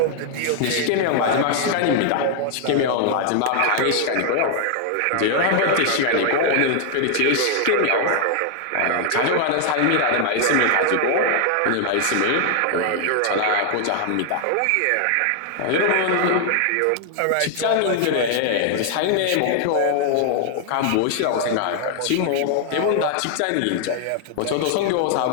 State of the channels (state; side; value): different; both; correlation 0.00